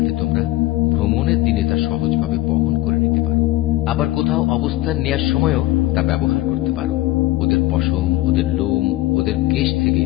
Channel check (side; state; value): right; quieter; 16.5 dB